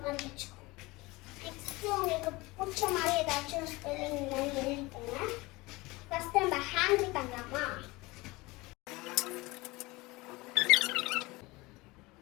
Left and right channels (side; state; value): right; quieter; 22.2 dB